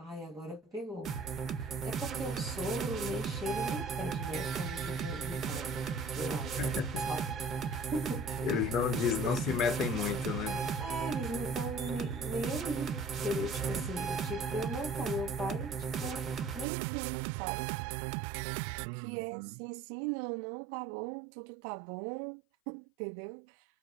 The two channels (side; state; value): left; drops out; at 16.7 s